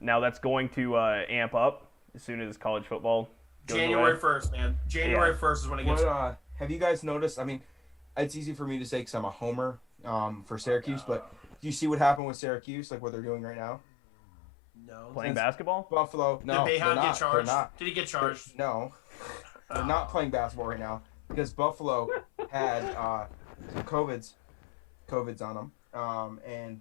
Now that's going to amp up as soon as college football goes January away. 1st, man. January 1st is when it gets... Have you guys noticed? I mean, it's easy for me to say because I'm a homer for Syracuse, but do you see what happened with Syracuse, what they're doing right now? No. Playing basketball? Buffalo. No, Did they're Bayhound not. get charged? They're not. Did he get charged? No, they're not playing basketball right now because Buffalo had some COVIDs on them, and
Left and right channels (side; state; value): right; drops out; at 12.2 s